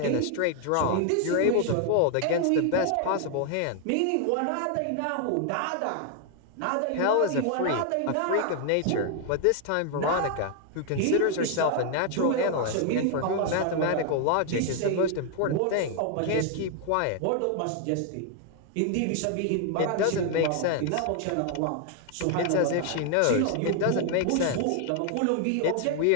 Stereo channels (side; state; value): both; different; correlation 0.00